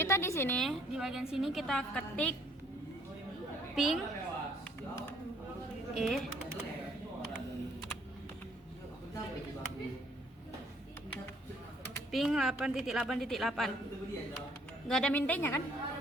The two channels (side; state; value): both; normal; correlation 0.63